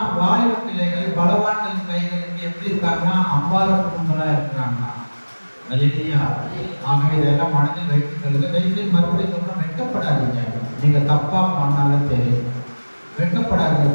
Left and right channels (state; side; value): inverted; both; correlation -1.00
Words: வாலிப பிள்ளைகள் பலவான்களின் கைகளுக்கு எப்படி இருக்காங்கன்னா அம்பார குடும்பங்களா இருக்கிறாங்க. ஆகவே இதெல்லாம் மனதில் வைத்துக் கொள்ளுங்க. தயவுசெய்து மறுபடியும் சொல்றோம், வெட்கப்படாதீங்க. நீங்க தப்பா பண்ணாலும் சரி